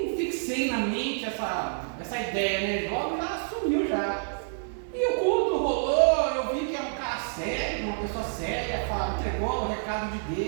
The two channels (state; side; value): silent; left; digital silence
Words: fixei na mente essa ideia, né? Logo já sumiu já. E o culto rolou, eu vi que era um cara sério, uma pessoa séria, entregou o recado de